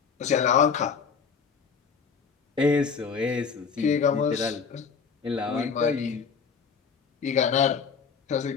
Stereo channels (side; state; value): right; quieter; 6.0 dB